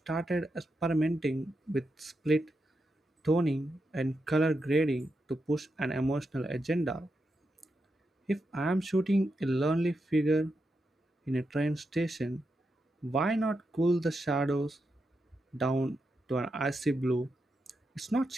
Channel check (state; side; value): normal; both; correlation 0.86